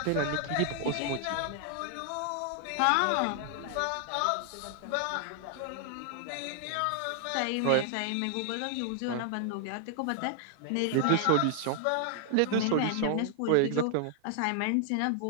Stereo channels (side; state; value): both; different; correlation 0.00